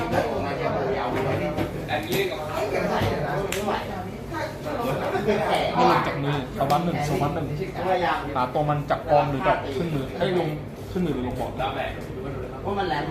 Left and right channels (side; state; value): both; identical; correlation 1.00